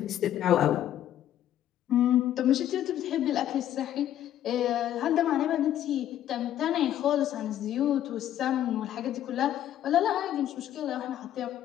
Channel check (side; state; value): right; quieter; 11.6 dB